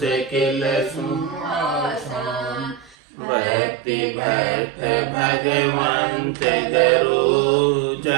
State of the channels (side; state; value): left; drops out; at 3.0 s